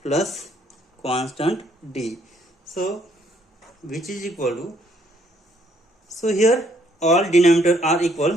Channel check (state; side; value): normal; both; correlation 0.67